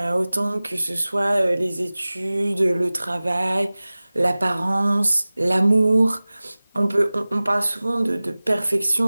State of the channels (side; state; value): both; inverted; correlation -0.98